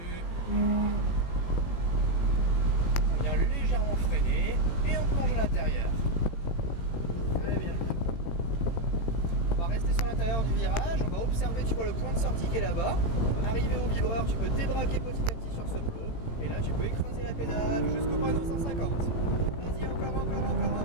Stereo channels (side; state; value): right; late; 18 ms